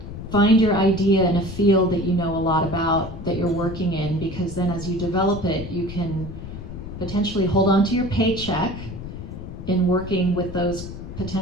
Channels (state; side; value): noise; left; rumble, 10 dB below the sound